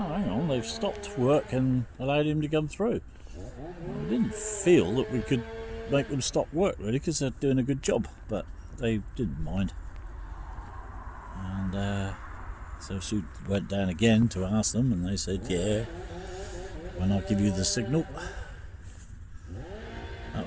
hang on, they've stopped work and allowed him to come through. I didn't feel that we could make them stop work, really, because they're doing a good job, but they didn't mind. And so Sue went down again to ask them, and they said, yeah, when I give you the signal. That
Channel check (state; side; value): identical; both; correlation 1.00